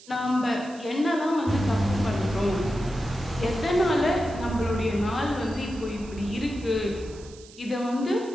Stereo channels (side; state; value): right; noise; hiss, 21 dB below the sound